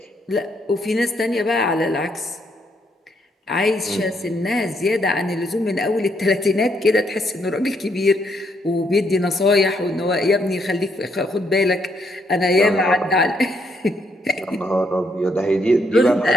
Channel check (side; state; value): both; normal; correlation 0.74